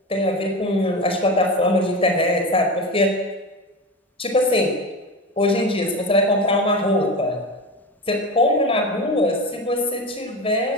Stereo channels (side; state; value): both; normal; correlation 0.25